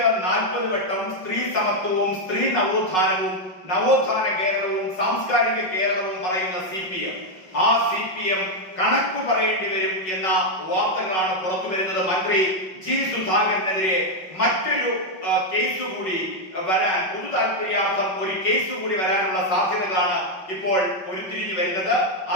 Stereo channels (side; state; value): right; late; 5.4 ms